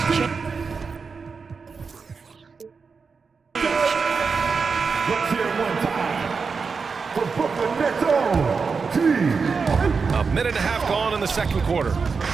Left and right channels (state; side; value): quieter; left; 5.1 dB